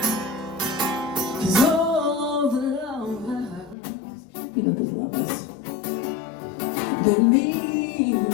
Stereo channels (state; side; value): drops out; right; at 3.8 s